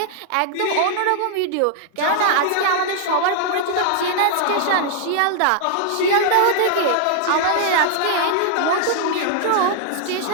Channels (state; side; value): different; both; correlation -0.01